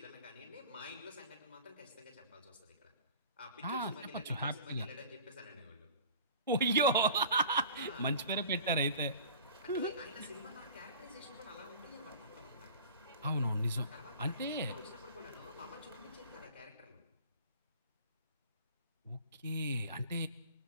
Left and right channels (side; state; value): both; inverted; correlation -0.42